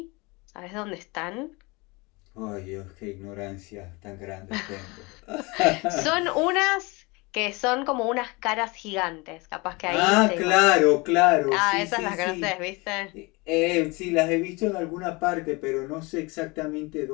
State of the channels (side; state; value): right; quieter; 26.0 dB